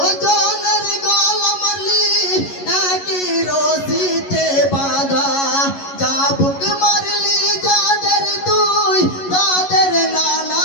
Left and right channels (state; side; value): late; right; 11 ms